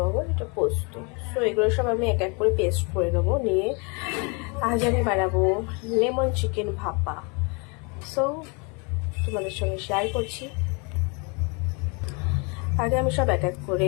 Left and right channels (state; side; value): quieter; right; 32.3 dB